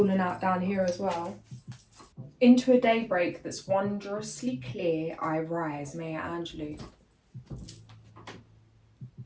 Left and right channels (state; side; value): identical; both; correlation 1.00